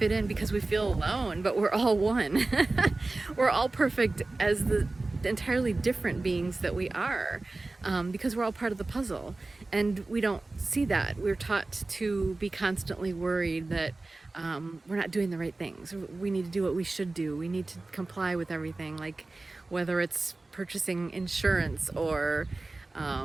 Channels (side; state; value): left; quieter; 3.2 dB